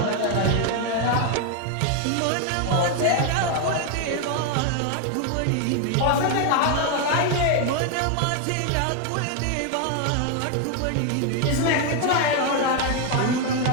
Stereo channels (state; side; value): different; both; correlation 0.01